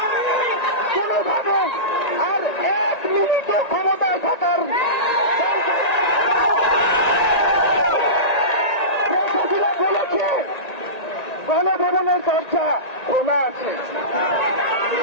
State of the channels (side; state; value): right; late; 1.9 ms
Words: কোনোভাবে আর এক মিনিটও ক্ষমতায় থাকার বলেছে গণভবনের দরজা খোলা আছে।